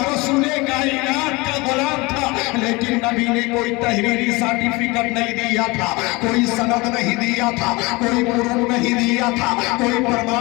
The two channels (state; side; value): quieter; right; 24.2 dB